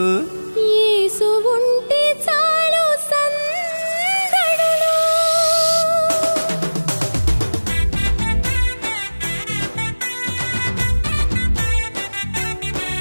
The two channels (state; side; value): inverted; both; correlation -1.00